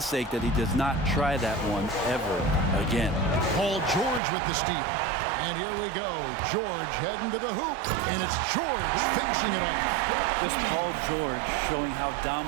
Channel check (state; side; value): drops out; left; at 4.2 s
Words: sake that he does not try that one ever again. Paul George with the steal. And here we go. George heading to the hoop. And it's George finishing it off. Just Paul George showing how